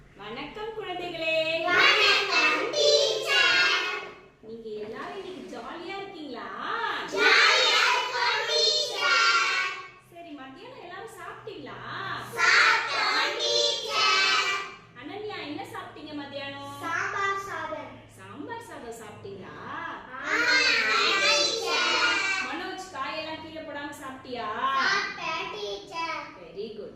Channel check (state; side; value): identical; both; correlation 1.00